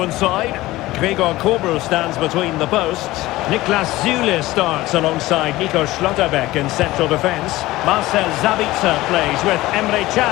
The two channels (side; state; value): right; quieter; 17.9 dB